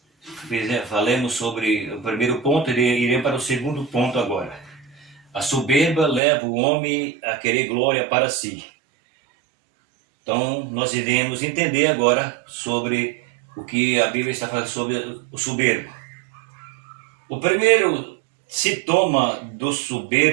falemos sobre o primeiro ponto e iremos para o segundo ponto agora. A soberba leva o homem a querer glória para si. Então, nós iremos entender agora sobre o que a Bíblia está falando sobre o soberbo. O primeiro sintoma do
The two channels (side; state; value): left; drops out; at 6.2 s